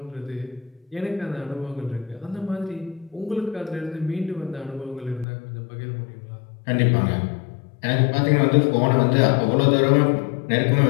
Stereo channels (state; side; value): drops out; right; at 5.2 s